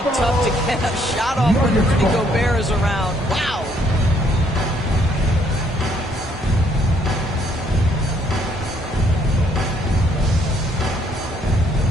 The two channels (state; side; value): normal; both; correlation 0.67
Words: tough to get a shot off when Rudy Gobert is around. Wow.